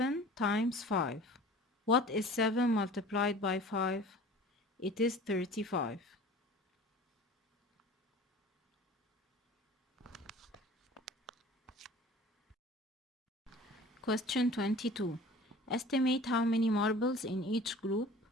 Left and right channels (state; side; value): normal; both; correlation 0.43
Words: times 5. What is 7 multiplied by 5? It is 35. Question 22. Estimate how many marbles in each group,